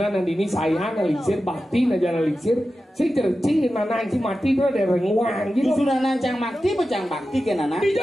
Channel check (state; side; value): normal; both; correlation 0.93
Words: nanti ini saya nah lingsir bakti nah jangan lingsir. Si cerci nah nanti mati tuh ada renguang gitu. Sudah nancang bakti becang bakti ke nana.